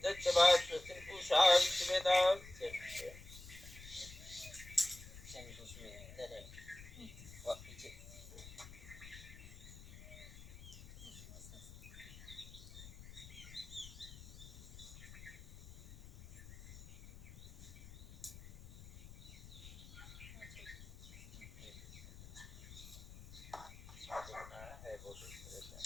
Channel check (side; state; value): left; noise; rumble, 15 dB below the sound